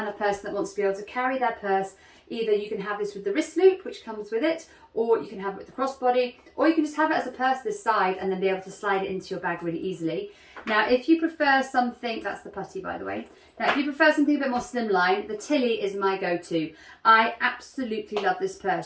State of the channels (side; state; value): both; identical; correlation 1.00